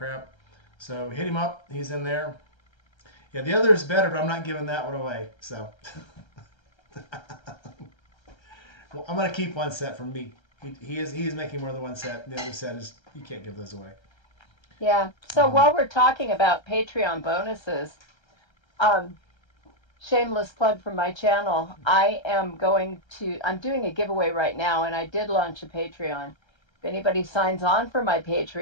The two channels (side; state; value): right; late; 1.3 ms